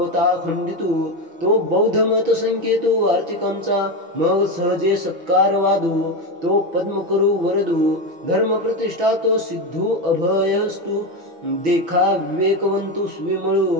खंडितु तो बौद्ध मत संकेतु आर्थिकांचा मग सहजे सत्कार वादू तो पद्म करू वरदू धर्म प्रतिष्ठा तो सिद्धू अभयस्तु देखा विवेकवंतु स्विमळू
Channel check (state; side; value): late; left; 6.1 ms